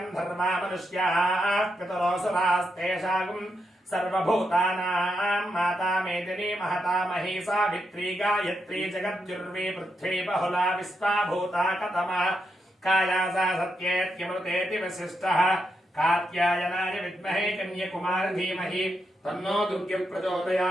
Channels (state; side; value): normal; both; correlation 0.83